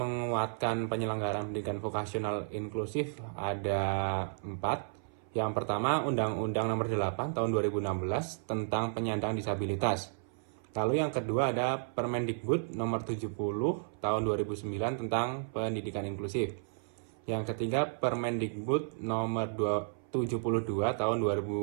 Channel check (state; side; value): silent; left; 56 dB below the other